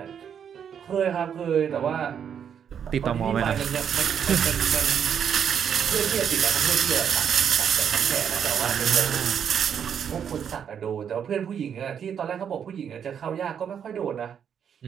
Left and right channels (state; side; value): quieter; left; 8.1 dB